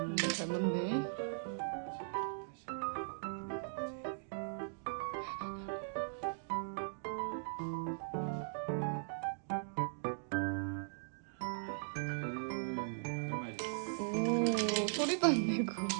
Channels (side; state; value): left; silent; digital silence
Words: 잘 맞네. 오, 소리도 안 내고.